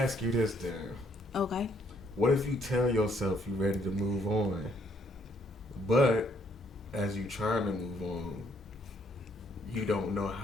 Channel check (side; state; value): both; normal; correlation 0.68